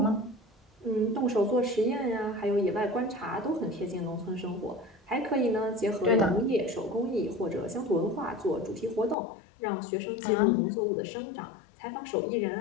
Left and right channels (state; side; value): drops out; right; at 9.2 s